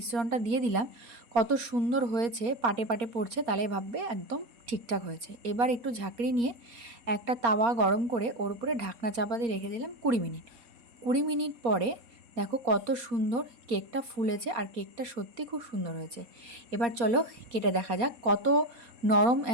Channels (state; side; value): late; left; 4.2 ms